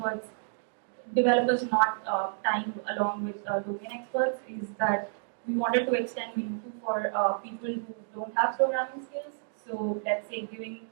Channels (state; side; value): silent; left; digital silence